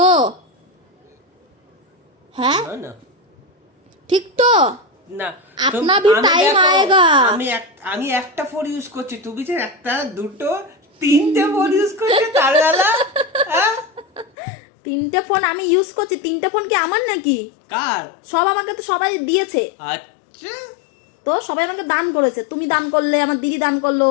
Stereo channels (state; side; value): drops out; right; at 14.3 s